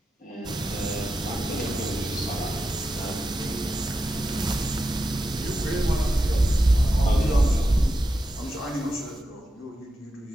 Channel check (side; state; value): both; normal; correlation 0.89